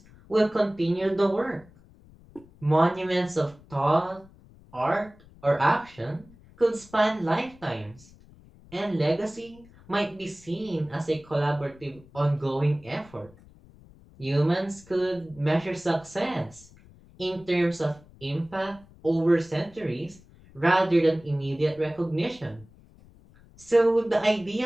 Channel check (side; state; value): left; noise; rumble, 24 dB below the sound